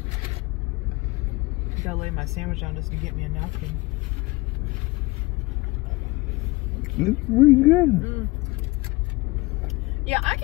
Gotta lay my sandwich down just to get me a napkin. It's pretty good. Yeah, I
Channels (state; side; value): quieter; right; 22.6 dB